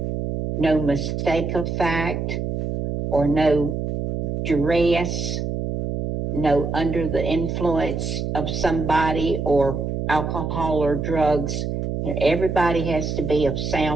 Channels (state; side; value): noise; right; hum, 2 dB below the sound